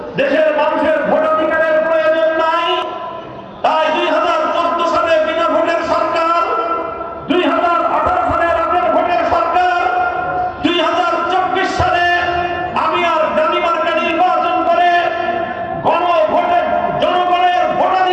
দেশের মানুষের ভোটাধিকারের প্রয়োজন নাই। তাই 2014 সালে বিনা ভোটের সরকার, 2018 সালে রাতের ভোটের সরকার, 2024 সালে আমি আর ডালিমার্কা নির্বাচন করে গণভোটে জনগণের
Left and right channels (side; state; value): both; identical; correlation 1.00